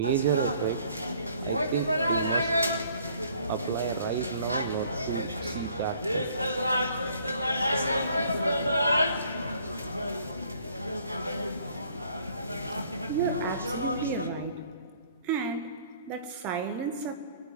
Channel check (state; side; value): inverted; both; correlation -0.59